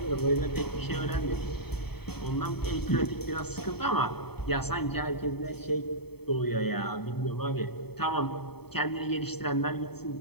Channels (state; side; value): late; right; 0.97 ms